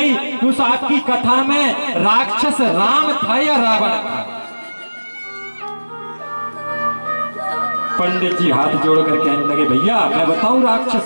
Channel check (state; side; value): inverted; both; correlation -1.00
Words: कि उस आपकी कथा में राक्षस राम था या रावण था। पंडित जी हाथ जोड़कर कहने लगे भैया मैं बताऊं